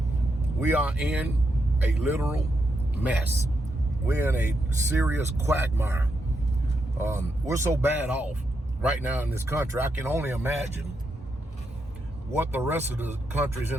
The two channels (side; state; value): both; normal; correlation 0.82